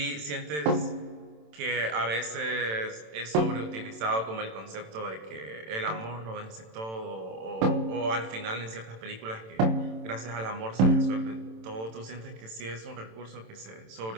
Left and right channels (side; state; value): left; late; 27 ms